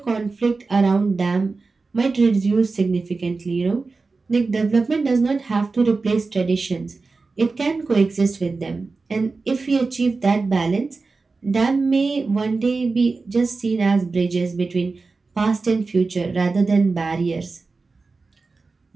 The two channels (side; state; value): left; quieter; 4.0 dB